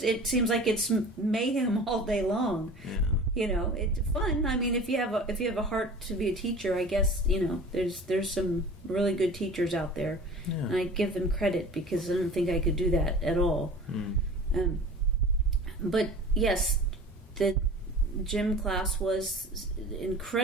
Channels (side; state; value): both; normal; correlation 0.40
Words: seems like it's mayhem all day long. Yeah. It's fun. I mean, if you have a heart to be a teacher, I guess, there's some really good teachers out there. Yeah. And I give them credit because I don't think I could do that at all. Mm. But yes, the gym class was